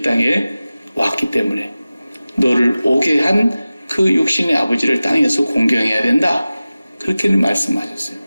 땅에 왔기 때문에 너를 오게 한 그 육신의 아버지를 땅에서 공경해야 된다. 그렇게는 말씀하셨어요.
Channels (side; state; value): both; inverted; correlation -0.97